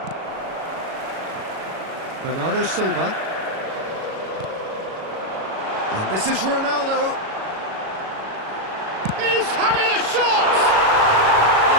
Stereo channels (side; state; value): left; late; 37 ms